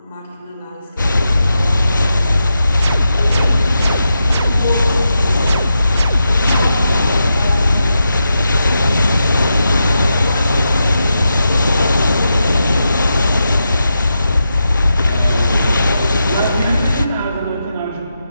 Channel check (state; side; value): inverted; both; correlation -0.87